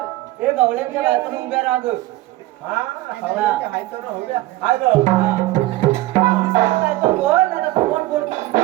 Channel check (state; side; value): quieter; left; 17.6 dB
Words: हे गवळ्यांच्या बायकोन उभ्या राहा ग बोल नाही कोण बोल